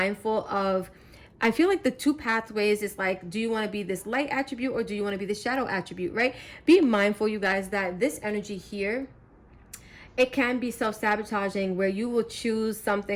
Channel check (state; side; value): identical; both; correlation 1.00